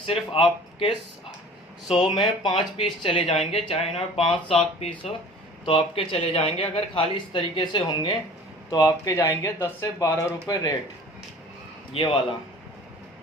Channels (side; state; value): both; normal; correlation 0.45